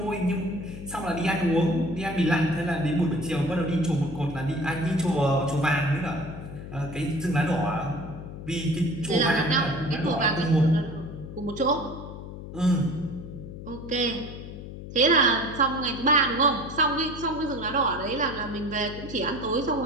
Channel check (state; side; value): noise; left; hum, 11 dB below the sound